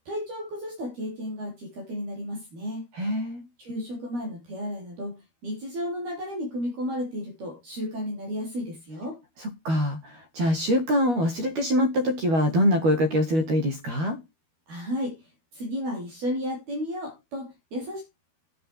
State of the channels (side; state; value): left; late; 12 ms